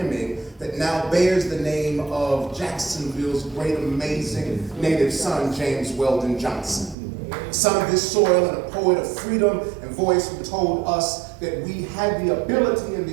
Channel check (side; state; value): left; drops out; at 7.0 s